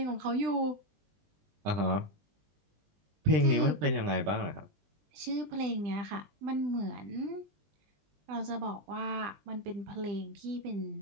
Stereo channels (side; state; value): left; late; 20 ms